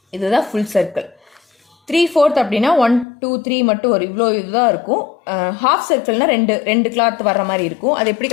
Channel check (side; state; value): right; drops out; at 3.1 s